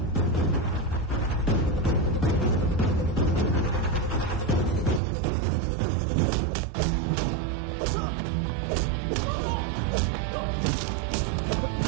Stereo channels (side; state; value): left; drops out; at 5.0 s